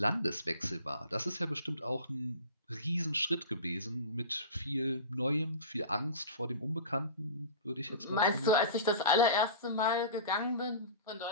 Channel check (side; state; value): both; inverted; correlation -0.33